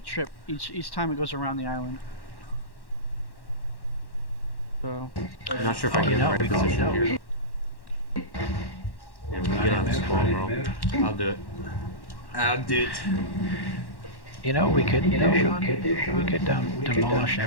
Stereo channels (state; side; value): late; right; 1.1 ms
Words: trip each time it goes around the island. So. I'm not sure if I get in the right position here. Yeah, we get on this phone, bro. I'll do it. I'll do it. You know what we could do, Sean? We could demolish